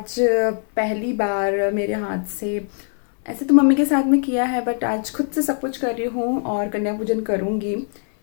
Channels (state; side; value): silent; right; 59 dB below the other